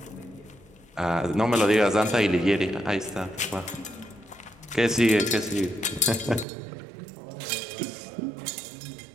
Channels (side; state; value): left; drops out; at 6.5 s